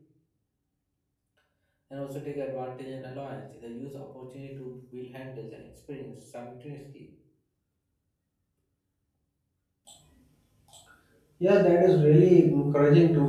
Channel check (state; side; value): identical; both; correlation 1.00